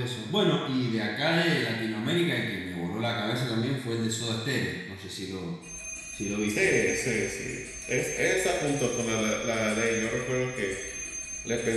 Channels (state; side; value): identical; both; correlation 1.00